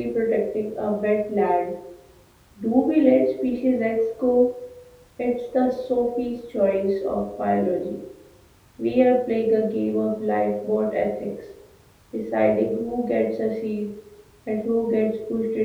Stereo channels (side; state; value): both; identical; correlation 1.00